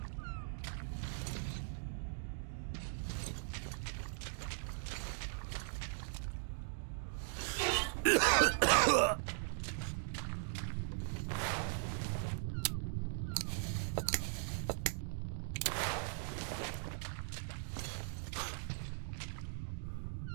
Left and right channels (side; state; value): left; silent; digital silence